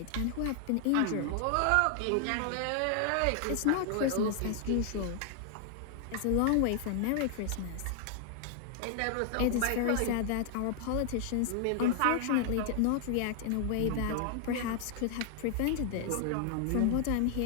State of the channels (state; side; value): different; both; correlation 0.00